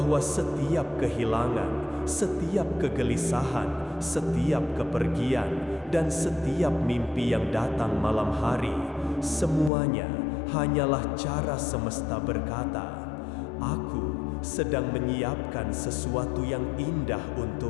setiap kehilangan, setiap kegelisahan, setiap kepergian, dan setiap mimpi yang datang malam hari, semuanya hanyalah cara semesta berkata, "Aku sedang menyiapkan sesuatu yang indah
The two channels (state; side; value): drops out; right; at 9.7 s